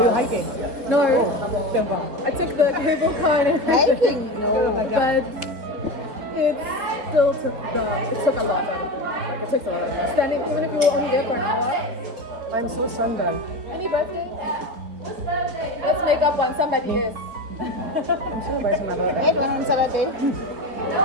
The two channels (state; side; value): late; left; 4.3 ms